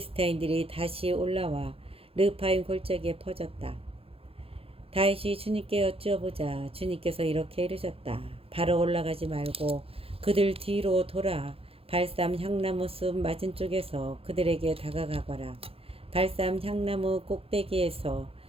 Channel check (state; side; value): late; left; 0.27 ms